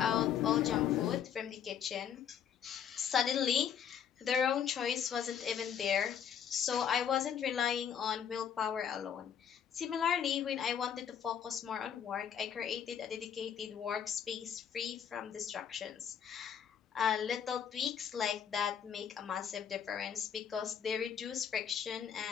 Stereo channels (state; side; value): quieter; right; 8.3 dB